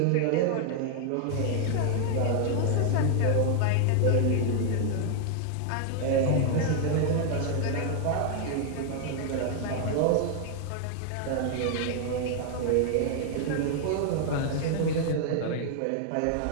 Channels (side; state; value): both; different; correlation 0.00